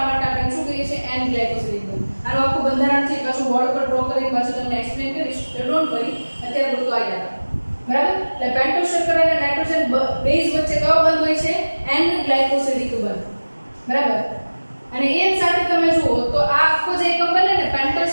માટે આપણે શું કહીએ છીએ? N ગ્લાયકોસિલિક બંધ. આનું આખું બંધારણથી પાછું બોર્ડ પર ડ્રો કરીને પાછું તમને એક્સપ્લેન કરીશ. ડોન્ટ વરી, અત્યારે પૂરતું આ યાદ રાખો. બરાબર? એટલે પેન્ટોઝ શર્કરા અને નાઇટ્રોજન બેઝ વચ્ચે કયો બંધ હોય છે? N ગ્લાયકોસિલિક બંધ. બરાબર? અને એ સાથે તમે જુઓ તો આ આખો જે એકમ બને ને પેન્ટોઝ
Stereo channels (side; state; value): both; inverted; correlation -1.00